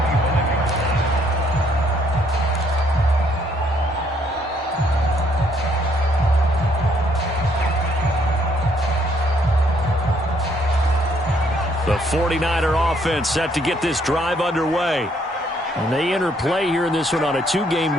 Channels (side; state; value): both; normal; correlation 0.68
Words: The 49er offense set to get this drive underway. And they enter play here in this one on a 2-game